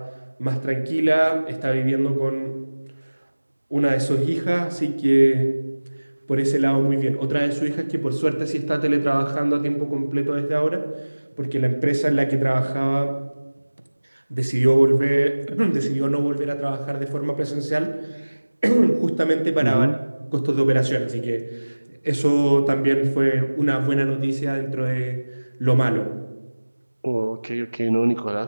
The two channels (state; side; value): inverted; both; correlation -1.00